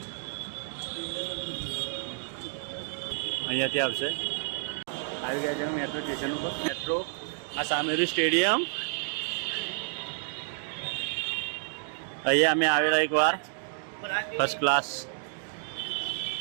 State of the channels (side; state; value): left; silent; 58 dB below the other